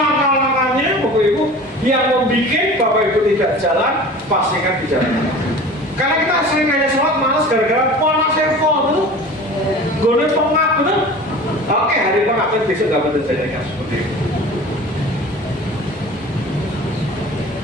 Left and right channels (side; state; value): both; normal; correlation 0.39